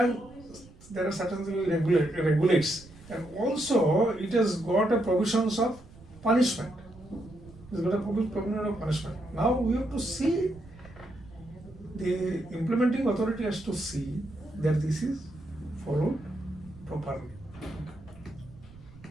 there are certainly regulates, and also it has got a provisions of punishment. It's got a provision of punishment. Now we have to see, the implementing authority has to see that this is followed properly.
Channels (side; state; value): right; noise; rumble, 21 dB below the sound